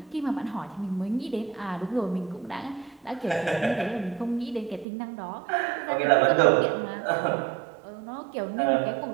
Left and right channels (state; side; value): drops out; left; at 4.9 s